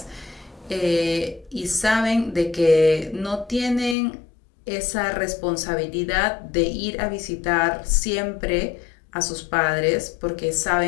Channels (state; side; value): drops out; right; at 4.0 s